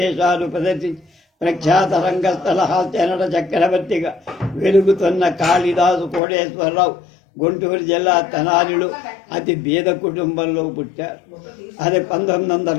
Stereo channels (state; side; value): drops out; right; at 6.2 s